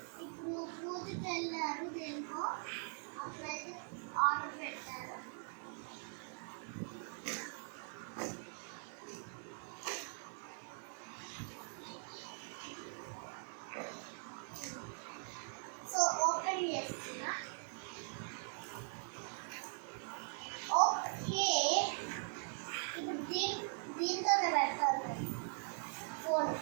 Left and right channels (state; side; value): silent; left; 50 dB below the other